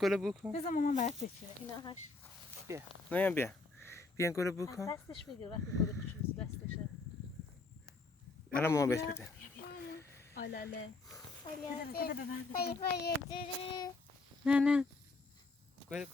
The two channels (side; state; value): right; quieter; 3.5 dB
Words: بو کن. بذار مامان برات بچینه اینا هاش. بیا این گلو بو کن. دستش بگیر وقتی گل کوچولو دستشه. الان مامان بهش بده. آلاله آلاله